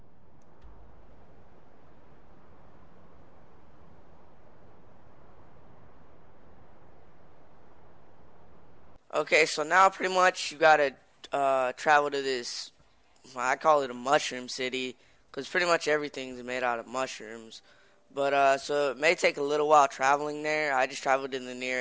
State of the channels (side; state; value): both; identical; correlation 1.00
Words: okay, so now pretty much you gotta travel to this, I call it a mushroom city, because pretty much everything's made out of mushrooms. But so it may take a little while traveling there. I just traveled to the